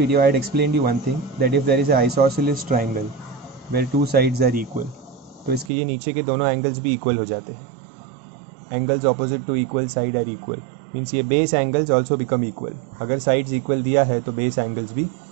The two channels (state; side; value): drops out; left; at 5.7 s